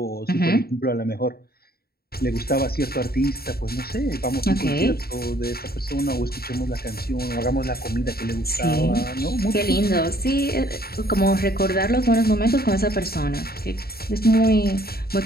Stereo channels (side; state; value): right; late; 0.45 ms